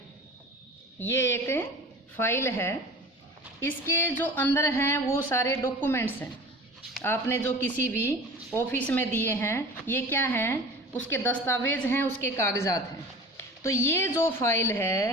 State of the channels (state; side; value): normal; both; correlation 0.39